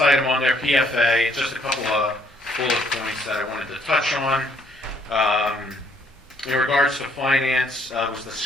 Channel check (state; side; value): normal; both; correlation 0.66